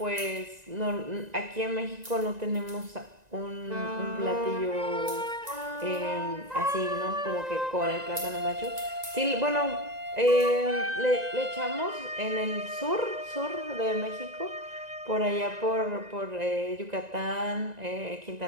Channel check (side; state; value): left; late; 1.9 ms